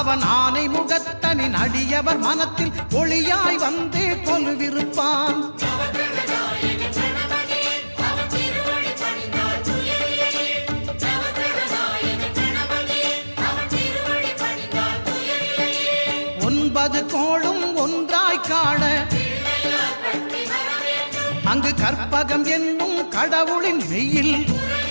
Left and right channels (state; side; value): inverted; both; correlation -1.00